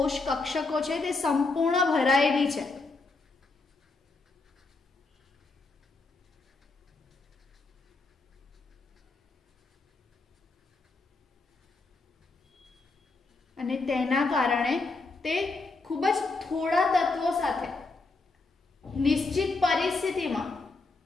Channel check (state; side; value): quieter; right; 3.6 dB